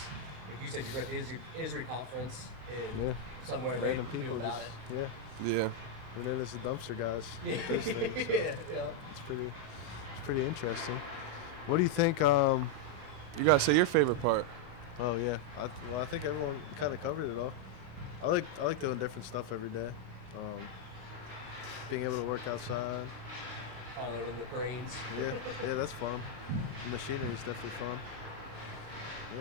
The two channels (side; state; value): left; late; 32 ms